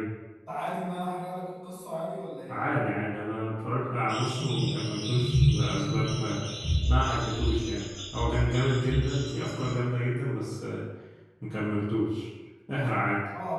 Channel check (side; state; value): both; identical; correlation 1.00